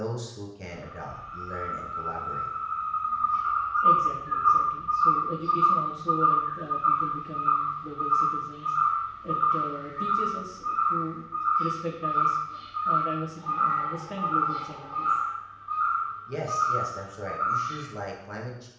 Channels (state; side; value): identical; both; correlation 1.00